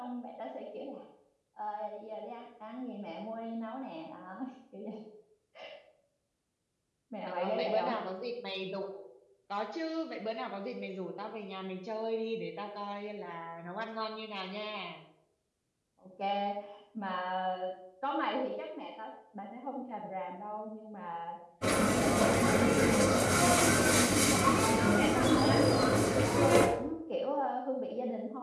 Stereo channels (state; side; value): identical; both; correlation 1.00